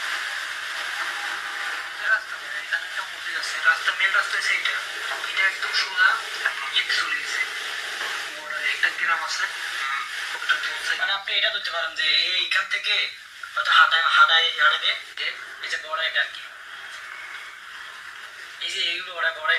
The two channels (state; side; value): identical; both; correlation 1.00